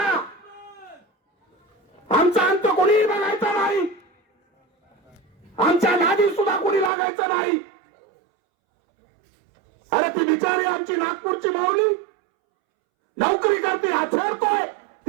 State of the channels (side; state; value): left; drops out; at 6.9 s